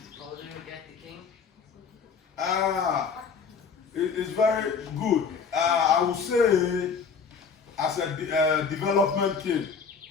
get the king? It's very good. I would say, as a development kid,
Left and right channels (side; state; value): right; quieter; 5.9 dB